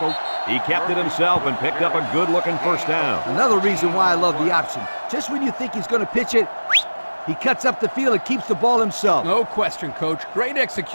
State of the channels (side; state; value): both; inverted; correlation -1.00